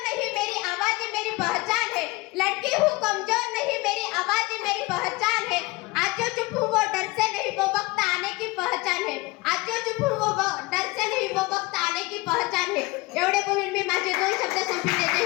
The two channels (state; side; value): quieter; right; 23.0 dB